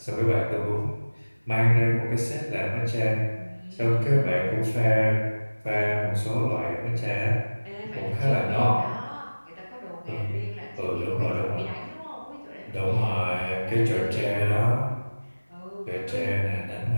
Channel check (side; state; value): both; inverted; correlation -1.00